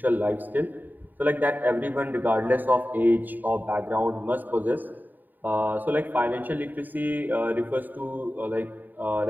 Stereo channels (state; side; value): late; left; 0.088 ms